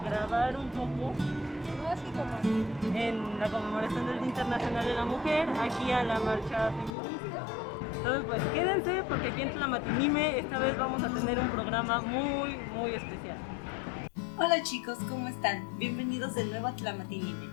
grabar un poco en la conmemoración del Día Internacional de la Mujer, aquí a la marcha feminista. Entonces pues quédense porque aquí en Tlamatinime esta vez vamos a tener un programa muy especial. Hola chicos, ¿cómo están? Bienvenidos de nuevo a Tlamatinime.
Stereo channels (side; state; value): right; drops out; at 7.0 s